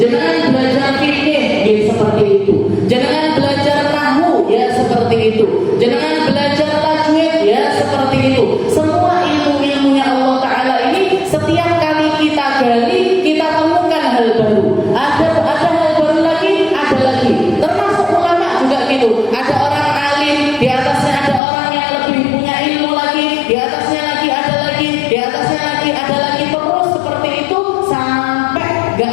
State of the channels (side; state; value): right; drops out; at 21.4 s